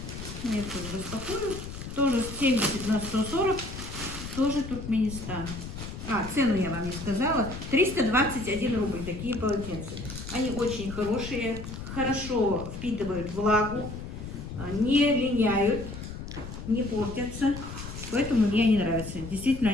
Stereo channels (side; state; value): left; noise; rumble, 9 dB below the sound